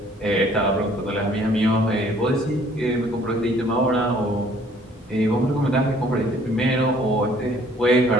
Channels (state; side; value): normal; both; correlation 0.58